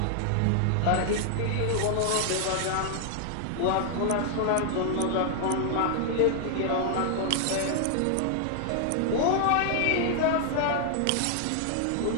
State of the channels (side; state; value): both; different; correlation 0.00